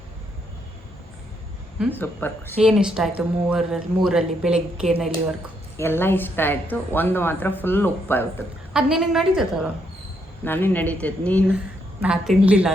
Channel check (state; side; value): normal; both; correlation 0.75